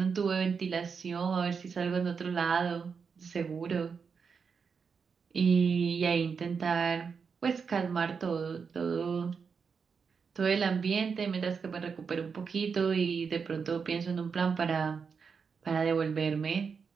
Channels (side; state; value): left; quieter; 5.8 dB